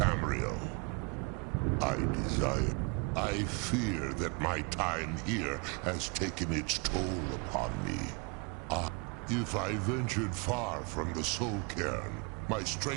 I fear that my time here has taken its toll upon me. If I ventured far from the Soul Cairn, my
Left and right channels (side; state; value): left; quieter; 32.6 dB